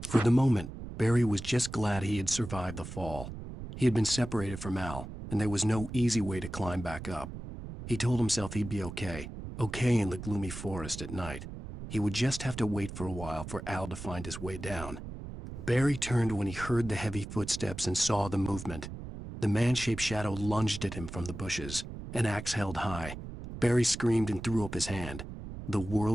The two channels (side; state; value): right; noise; rumble, 10 dB below the sound